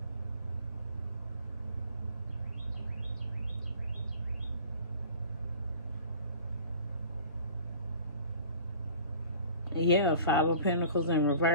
Yeah, Five of Pentacles in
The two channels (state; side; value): inverted; both; correlation -0.46